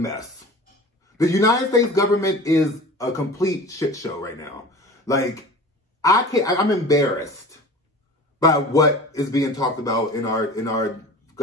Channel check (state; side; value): normal; both; correlation 0.38